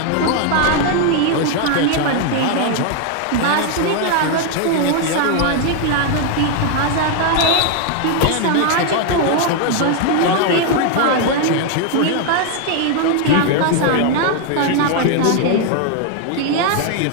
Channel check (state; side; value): different; both; correlation 0.00